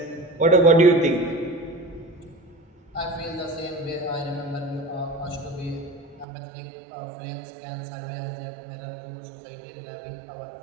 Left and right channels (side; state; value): left; drops out; at 6.2 s